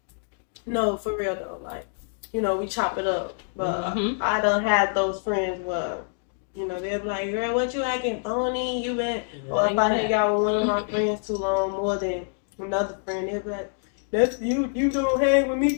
No, for real though. Like, you know, we chop it up. But Mhm. I done had those friends where, you know, they'll be like, girl, what you acting phony? You been, or if I hang out with one of my friends too long, more than another friend, they'll be like, that's you don't hang with me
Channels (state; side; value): silent; right; digital silence